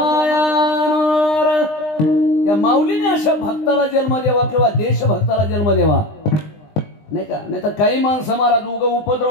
त्या माऊलीने अशा भक्ताला जन्म द्यावा किंवा देशभक्ताला जन्म द्यावा नाही का? नाही तर काही माणसं महाराज उग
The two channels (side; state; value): right; late; 20 ms